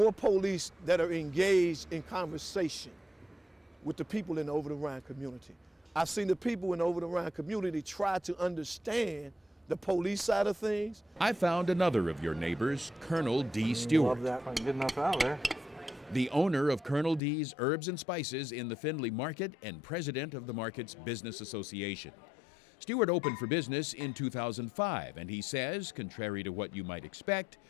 police that are engaged in conversation with the people in the Over the Rhine community. I've seen the people in the Over the Rhine community try to understand the police side of things. I found another of your neighbors, Colonel D. Stewart. Love that if I can get enough out there. The owner of Colonel D's Herbs and Spices in the Findlay Market and president of the market's business association. Stewart opened for business in 2005, and he says, contrary to what you might expect,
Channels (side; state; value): right; drops out; at 17.2 s